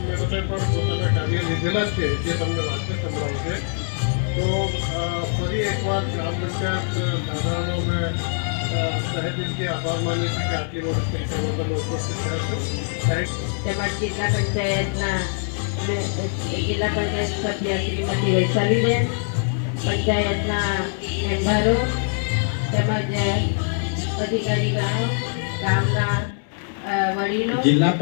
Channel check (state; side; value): silent; right; 63 dB below the other